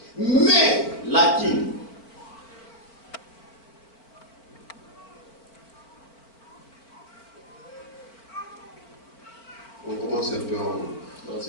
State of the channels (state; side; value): late; right; 4.5 ms